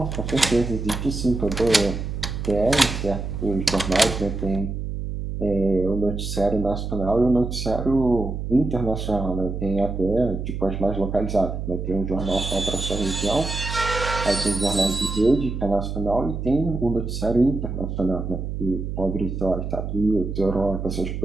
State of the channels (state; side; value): noise; right; hum, 4 dB below the sound